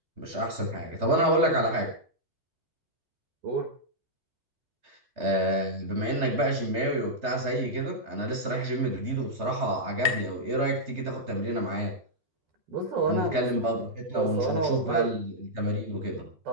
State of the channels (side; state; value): left; late; 3.3 ms